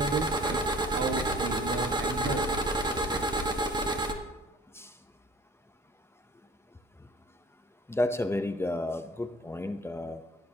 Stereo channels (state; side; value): normal; both; correlation 0.49